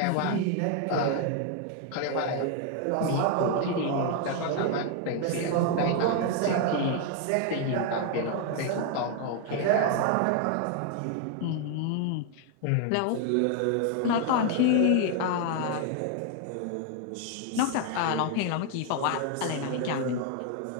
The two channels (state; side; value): different; both; correlation 0.00